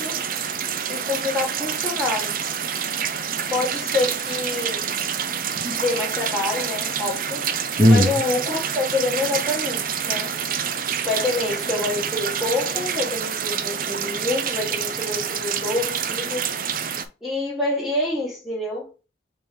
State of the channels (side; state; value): both; normal; correlation 0.33